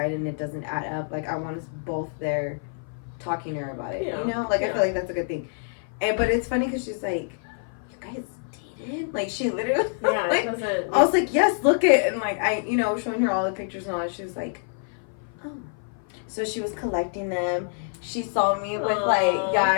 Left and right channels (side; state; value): right; silent; 55 dB below the other